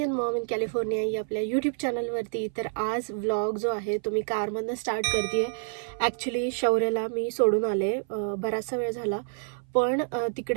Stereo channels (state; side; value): silent; left; 57 dB below the other